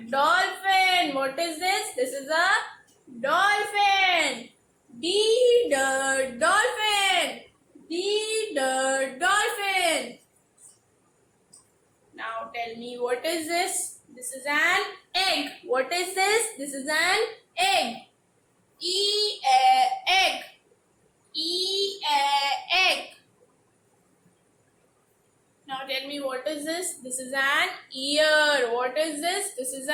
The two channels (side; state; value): both; identical; correlation 1.00